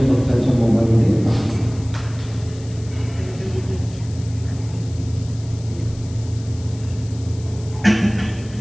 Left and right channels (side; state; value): left; noise; hiss, 21 dB below the sound